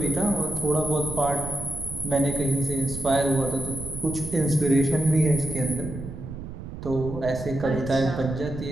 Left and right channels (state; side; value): noise; right; rumble, 9 dB below the sound